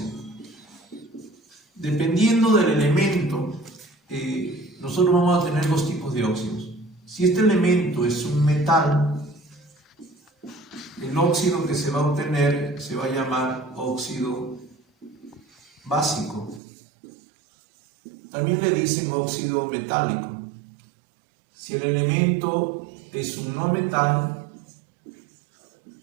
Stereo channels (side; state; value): left; drops out; at 16.6 s